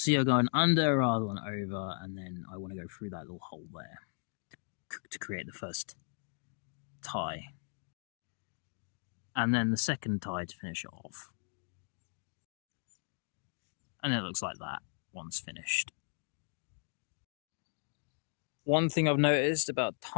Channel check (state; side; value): silent; right; 54 dB below the other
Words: you're going under rather than over, and then I want to go through that little hole there to create the first tie. And then the second tie to finish it off. And it looks like that once finished. One thing I've noticed about